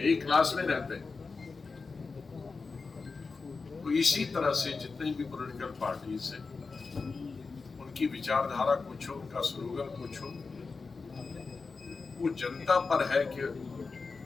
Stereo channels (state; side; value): quieter; right; 4.4 dB